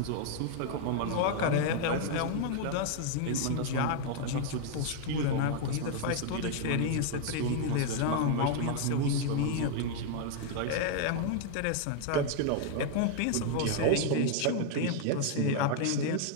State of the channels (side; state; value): both; different; correlation 0.00